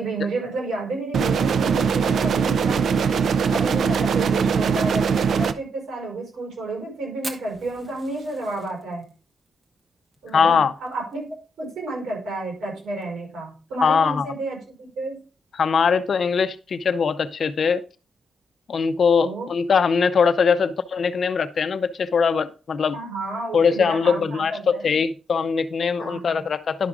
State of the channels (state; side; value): normal; both; correlation 0.78